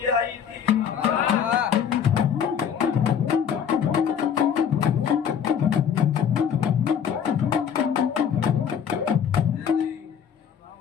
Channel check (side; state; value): right; quieter; 8.0 dB